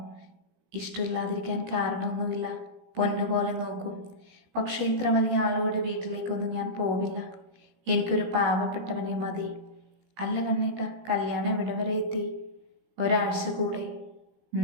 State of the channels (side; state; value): left; late; 16 ms